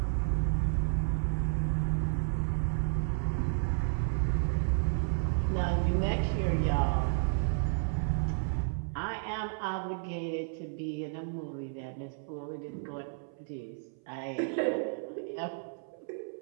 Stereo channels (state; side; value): silent; left; 56 dB below the other